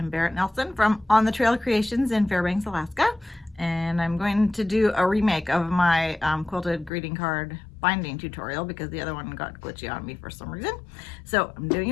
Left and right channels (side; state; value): right; drops out; at 6.9 s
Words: Barrett Nelson from On the Trail Creations in Fairbanks, Alaska, and I'm going to do a remake of my quilted greeting card binding tutorial because the other one got glitchy on me for some reason. So I'm doing